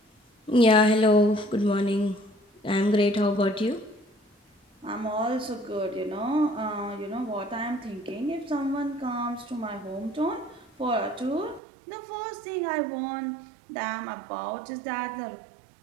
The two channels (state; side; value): drops out; left; at 11.6 s